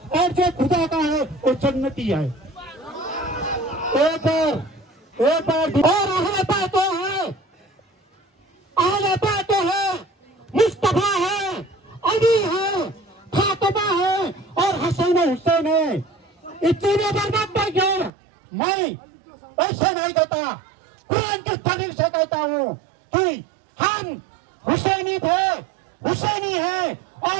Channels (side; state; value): left; drops out; at 18.1 s